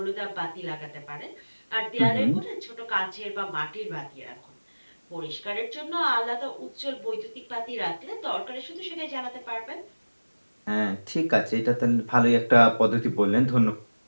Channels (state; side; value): inverted; both; correlation -1.00